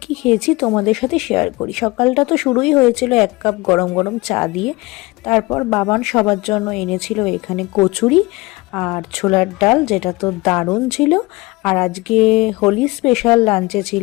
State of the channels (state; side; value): quieter; right; 22.7 dB